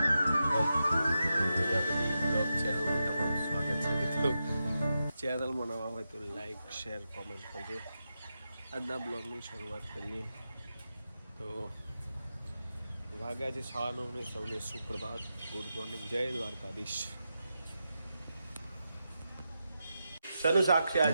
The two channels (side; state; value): both; inverted; correlation -0.88